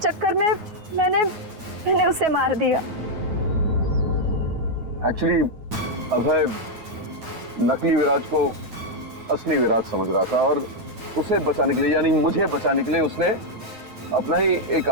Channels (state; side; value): late; left; 9.4 ms